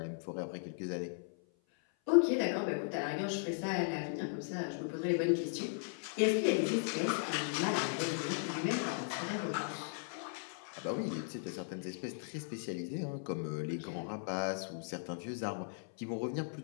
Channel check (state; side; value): silent; right; 53 dB below the other